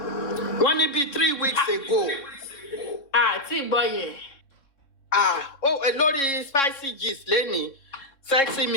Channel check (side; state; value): right; late; 3.7 ms